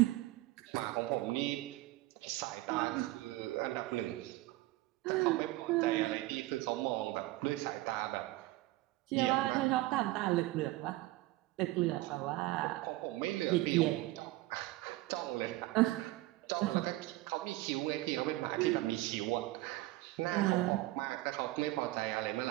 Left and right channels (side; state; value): left; quieter; 18.7 dB